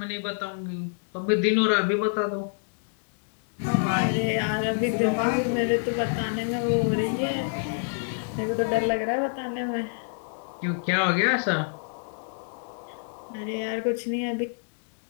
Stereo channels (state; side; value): silent; right; digital silence